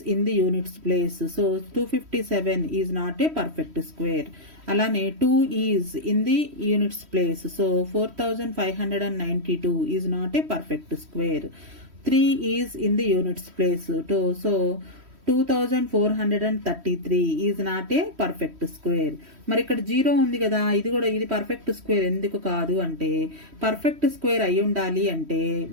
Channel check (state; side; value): late; left; 3.1 ms